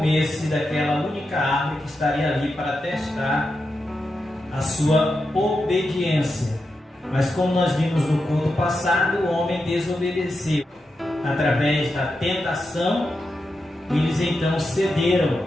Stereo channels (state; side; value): normal; both; correlation 0.88